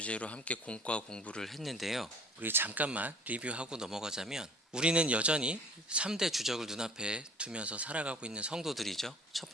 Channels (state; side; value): normal; both; correlation 0.48